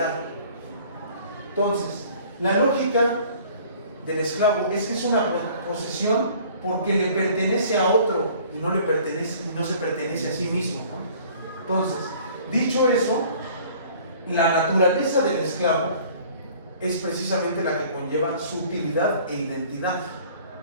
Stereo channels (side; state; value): both; inverted; correlation -0.51